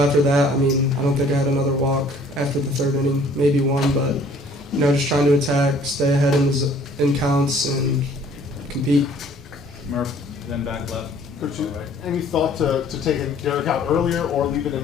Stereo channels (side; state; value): both; normal; correlation 0.56